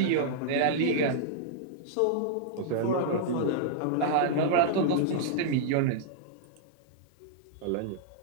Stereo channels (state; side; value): different; both; correlation -0.02